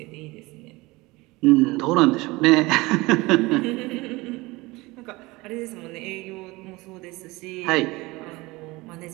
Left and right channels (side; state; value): left; quieter; 22.2 dB